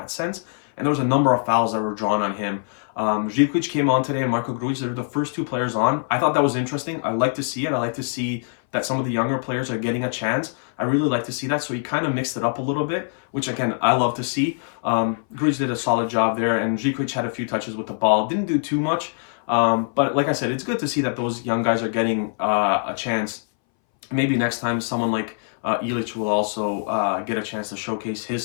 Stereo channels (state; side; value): silent; right; 61 dB below the other